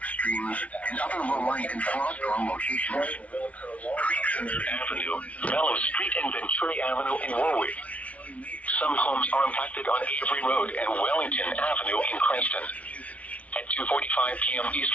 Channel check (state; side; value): late; right; 0.066 ms